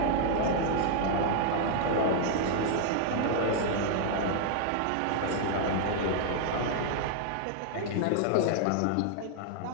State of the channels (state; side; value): different; both; correlation 0.00